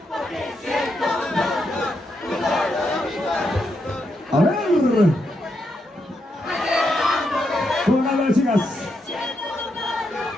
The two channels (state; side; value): normal; both; correlation 0.82